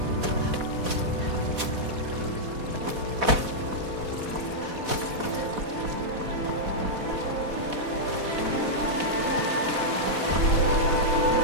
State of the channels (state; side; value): late; left; 4.0 ms